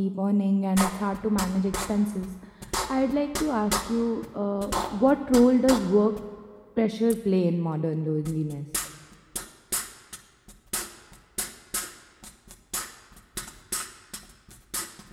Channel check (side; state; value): both; identical; correlation 1.00